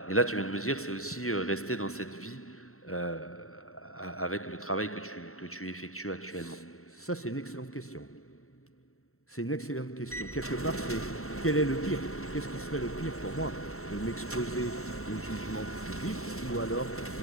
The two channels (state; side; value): late; right; 0.63 ms